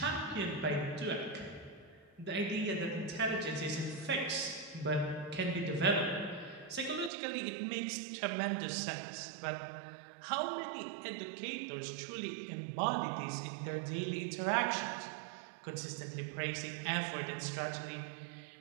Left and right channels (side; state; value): left; drops out; at 7.1 s